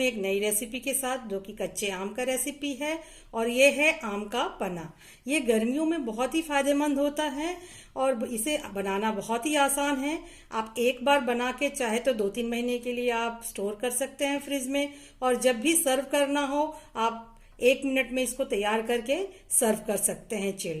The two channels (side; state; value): both; identical; correlation 1.00